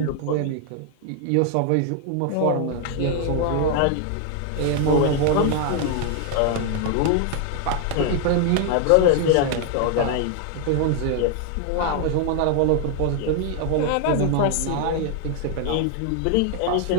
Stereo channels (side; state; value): both; different; correlation 0.00